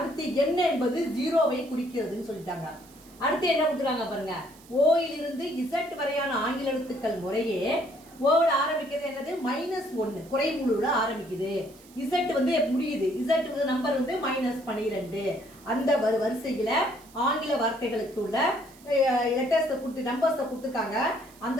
என்ன என்பது 0வை குறிக்கிறதுன்னு சொல்லிட்டாங்க. அடுத்து என்ன கொடுத்துருக்காங்க பாருங்க, ஓயிலிருந்து இசட் வரையான ஆங்கில எழுத்துக்கள் முறையே ஓவோட ஆரம்பிக்கிறது என்னது? -1 குறைமுழுல ஆரம்பிக்குது. இசட் வந்து முடியுது. இசட் நம்பர் வந்து -12. அந்த வரிசையில ஆங்கில வார்த்தைகளுக்கு உள்ள லெட்டர்ஸை கொடுத்து நம்பர்ஸை கொடுத்துருக்காங்க. அந்த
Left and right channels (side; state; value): right; noise; hiss, 24 dB below the sound